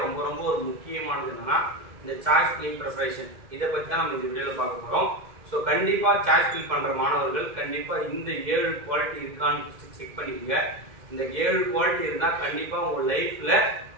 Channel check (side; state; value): left; late; 2.1 ms